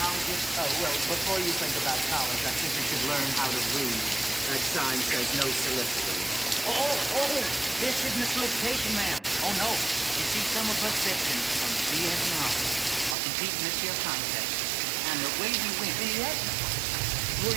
colleges. Oh, well, before you think about college, I think you should learn how to read. That sign says no soliciting. Oh, this isn't a solicitation, ma'am. Oh, no. You see, some of us veterans from Vietnam are competing this year contest. And the way we win... Vietnam? Were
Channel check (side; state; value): left; drops out; at 13.2 s